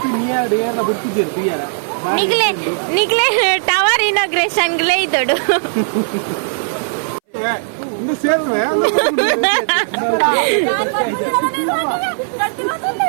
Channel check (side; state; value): left; silent; 61 dB below the other